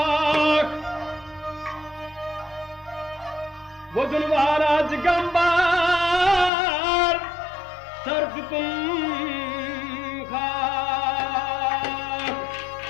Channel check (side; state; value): right; drops out; at 6.5 s